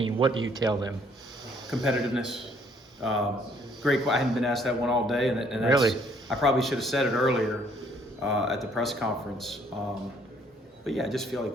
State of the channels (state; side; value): normal; both; correlation 0.63